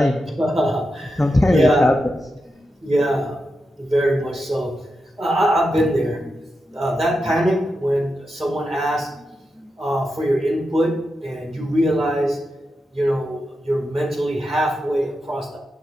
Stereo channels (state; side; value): normal; both; correlation 0.88